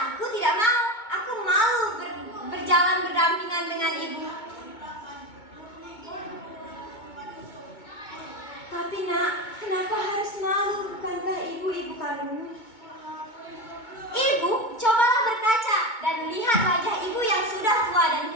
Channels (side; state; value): right; late; 2.2 ms